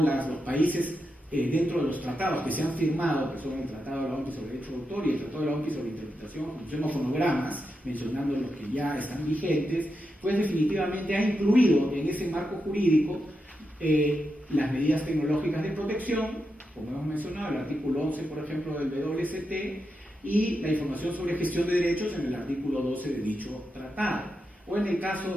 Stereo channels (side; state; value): both; normal; correlation 0.87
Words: los países dentro de los tratados que se han firmado, que son el Tratado de la OMPI sobre Derecho de Autor y el Tratado de la OMPI sobre Interpretación, Ejecución o Fonogramas, mencionando los que ya están vigentes, pues definitivamente ha incluido en ese marco jurídico las medidas tecnológicas de protección, como hemos mencionado, el artículo 11, por ejemplo, del WST, y la información sobre gestión de derechos en el artículo 12 de dicho tratado. O en el